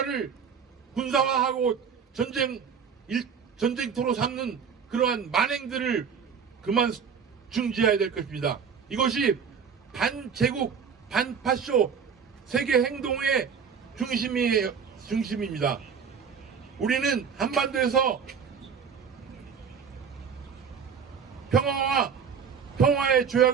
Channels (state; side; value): quieter; left; 6.7 dB